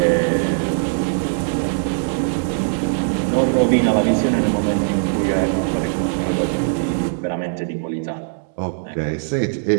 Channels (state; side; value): silent; left; digital silence